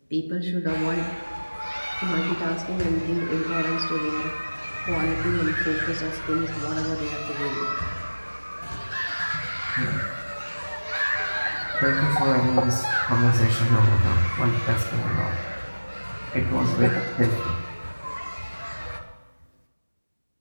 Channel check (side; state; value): both; inverted; correlation -1.00